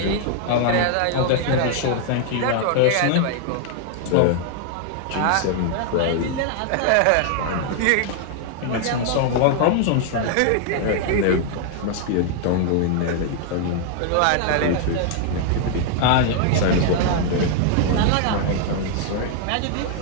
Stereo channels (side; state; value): both; different; correlation 0.00